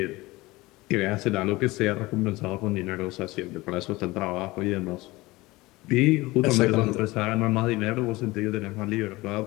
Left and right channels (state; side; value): quieter; right; 20.6 dB